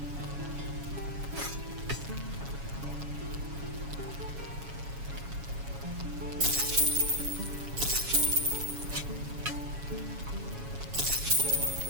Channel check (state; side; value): late; left; 7.2 ms